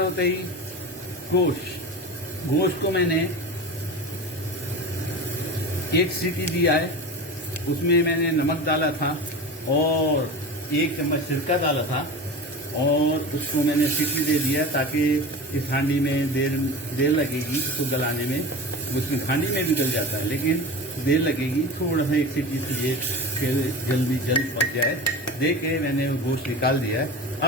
ही गोश्त को मैंने 1 सीटी दिया है। उसमें मैंने नमक डाला था और 1 चम्मच सिरका डाला था और उसको मैंने सीटी दे दिया ताकि इस हांडी में देर लगेगी उसको गलाने में। उसमें हांडी में भी गल जाता है लेकिन देर लगेगी, थोड़ा सा 1 सीटी चाहिए फिर जल्द पक जाए। दे के मैंने गोश्त निकाल दिया है।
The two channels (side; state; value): both; normal; correlation 0.30